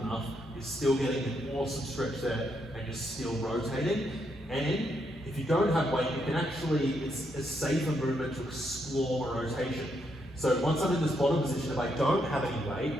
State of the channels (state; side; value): normal; both; correlation 0.78